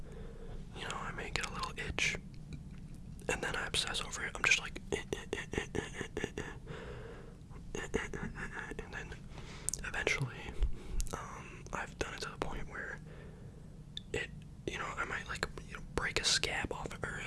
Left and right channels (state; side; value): identical; both; correlation 1.00